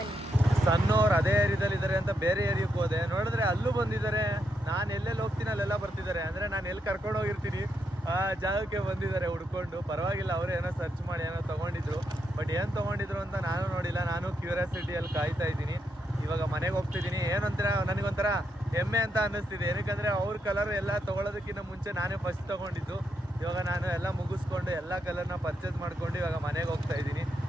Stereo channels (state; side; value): normal; both; correlation 0.81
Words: ಸಣ್ಣವ್ರು ಅದೇ ಏರಿಯಾದಲ್ಲಿ ಇದ್ದಾರೆ ಅಂತ ಬೇರೆ ಏರಿಯಾಕ್ಕೆ ಹೋದೆ, ನೋಡಿದ್ರೆ ಅಲ್ಲೂ ಬಂದಿದ್ದಾರೆ. ನಾನು ಎಲ್ಲೆಲ್ಲಿ ಹೋಗ್ತೀನಿ ಅಲ್ಲೆಲ್ಲ ಬರ್ತಿದ್ದಾರೆ. ಅಂದರೆ ನಾನು ಎಲ್ಲಿ ಕರ್ಕೊಂಡು ಹೋಗಿರ್ತೀನಿ ಆ ಜಾಗಕ್ಕೆ ಬಂದಿದ್ದಾರೆ ಹುಡ್ಕೊಂಡು. ಪರವಾಗಿಲ್ಲ, ಅವರು ಏನೋ ಸರ್ಚ್ ಮಾಡಿ ಏನೋ ತೊಗೊಂಡಿದ್ರು. ಬಟ್ ಏನು ತೊಗೊಂಡಿದ್ರು ಅಂತ ನಾನು ನೋಡಿಲ್ಲ. ನಾನು ಕ್ಯೂರಿಯಾಸಿಟಿಯಲ್ಲಿ ಕಾಯ್ತಾ ಇದ್ದೀನಿ. ಇವಾಗ ಮನೆಗೆ ಹೋಗ್ತಿದ್ದೀನಿ. ಏನಂತೀರ, ನನಗೊಂಥರ ಹೆಮ್ಮೆ ಅಂತ ಅನ್ನಿಸ್ತಿದೆ. ಏನಕ್ಕಂದರೆ ಅವ್ರ ಕಲರ್ ಎಲ್ಲ ತೊಗೊಳೋದಕ್ಕಿಂತ ಮುಂಚೆ ನಾನೇ ಫಸ್ಟ್ ತೊಗೊಂಡಿದ್ದು. ಇವಾಗ ನಾನು ಎಲ್ಲ ಮುಗಿಸ್ಕೊಂಡು ಎಲ್ಲ ಕಲರ್ನ ಪರ್ಚೇಸ್ ಮಾಡ್ಕೊಂಡು ಇವಾಗ ಮನೆಗೆ ಹೋಗ್ತಾ ಇದ್ದೀನಿ.